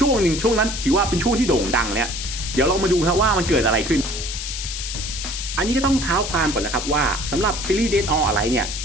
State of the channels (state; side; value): noise; left; hiss, 6 dB below the sound